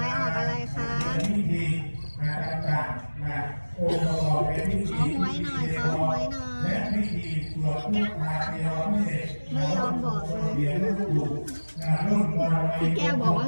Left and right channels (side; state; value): both; inverted; correlation -1.00